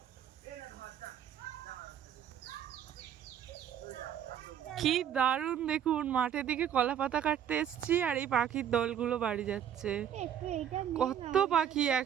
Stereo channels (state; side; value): quieter; left; 9.5 dB